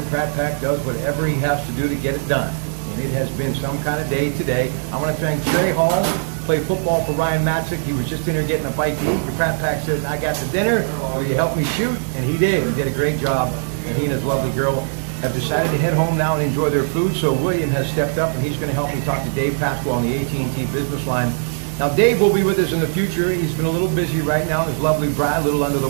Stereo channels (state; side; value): silent; left; digital silence